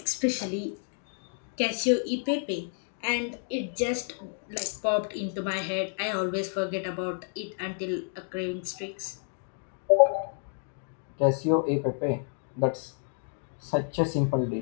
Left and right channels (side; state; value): right; silent; 58 dB below the other